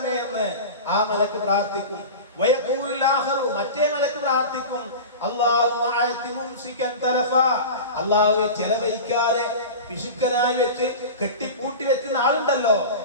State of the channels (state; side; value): inverted; both; correlation -0.30